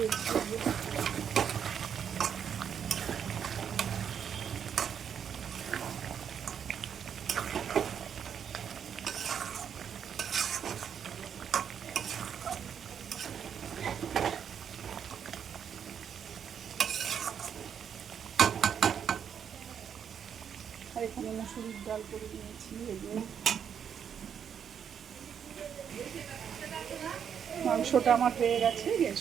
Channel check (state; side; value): quieter; left; 7.9 dB